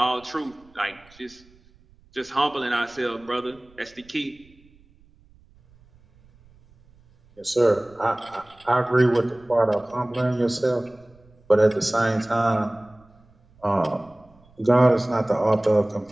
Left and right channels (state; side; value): noise; right; rumble, 29 dB below the sound